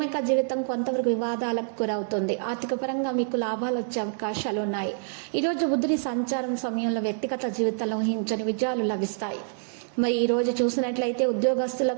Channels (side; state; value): left; silent; digital silence